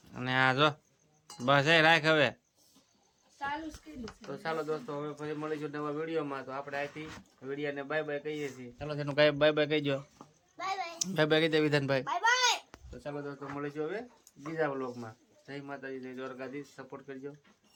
અને આ જો બસ એ રાખ હવે. તો ચાલો દોસ્તો, હવે પછી મળીશું નવા વિડીયોમાં. તો આપણે અહીંથી વિડીયોને બાય બાય કહીએ છીએ. ચાલો તેનું કઈ બાય બાય કહીજો. બાય બાય કહી દે વિધાનભાઈ. તો ચાલો દોસ્તો, મળીશું હવે બીજા વ્લોગમાં. જય માતાજી, જય દ્વારકાધીશ. સપોર્ટ કરજો,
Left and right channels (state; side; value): identical; both; correlation 1.00